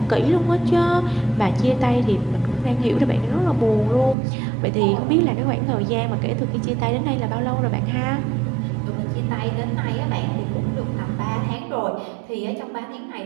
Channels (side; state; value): left; drops out; at 4.2 s